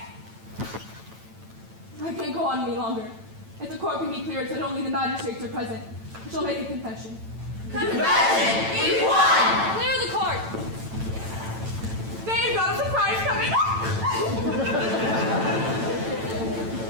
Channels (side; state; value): left; late; 9.0 ms